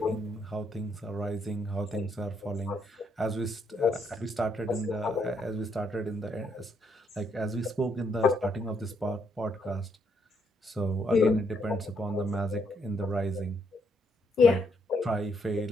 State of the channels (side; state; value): both; normal; correlation 0.74